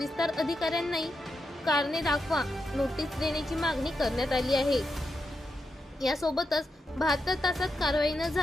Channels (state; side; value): normal; both; correlation 0.86